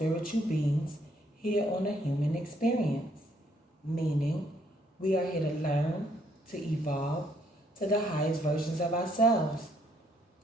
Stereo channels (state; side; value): normal; both; correlation 0.69